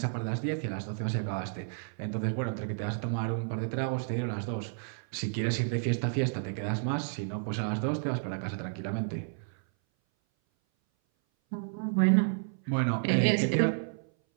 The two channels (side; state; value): left; silent; 57 dB below the other